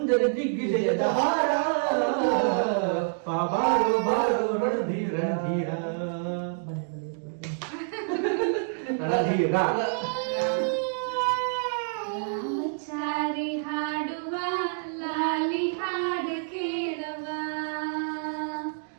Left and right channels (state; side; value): silent; left; digital silence